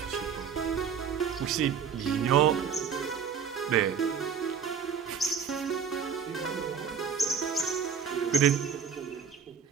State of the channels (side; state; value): left; quieter; 6.9 dB